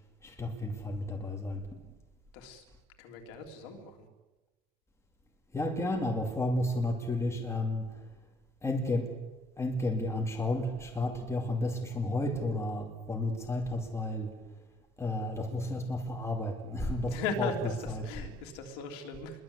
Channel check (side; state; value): both; normal; correlation 0.67